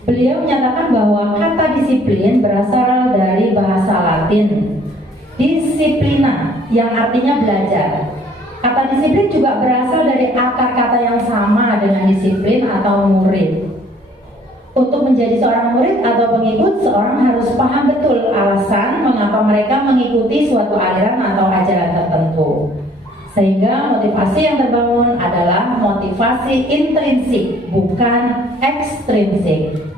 Beliau menyatakan bahwa kata disiplin berasal dari bahasa Latin disciplina yang artinya belajar. Kata disiplin juga berasal dari akar kata yang sama dengan disiplin atau murid. Untuk menjadi seorang murid atau pengikut, seorang harus paham betul alasan mengapa mereka mengikuti suatu aliran atau ajaran tertentu. Sehingga motivasi yang terbangun adalah motivasi intrinsik, bukan ekstrinsik.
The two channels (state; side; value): normal; both; correlation 0.58